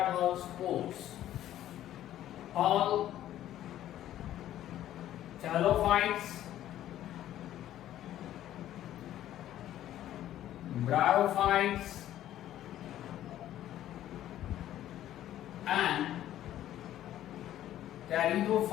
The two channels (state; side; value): quieter; right; 12.5 dB